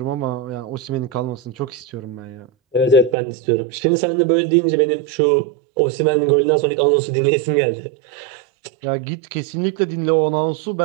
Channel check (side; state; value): left; drops out; at 3.2 s